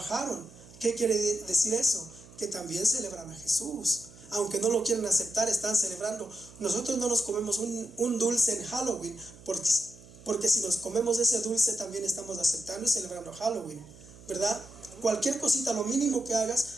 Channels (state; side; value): noise; right; hum, 21 dB below the sound